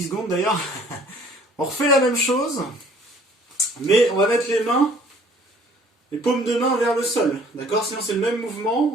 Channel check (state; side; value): normal; both; correlation 0.56